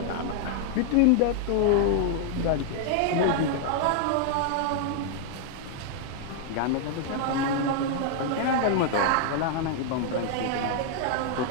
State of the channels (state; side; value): different; both; correlation 0.00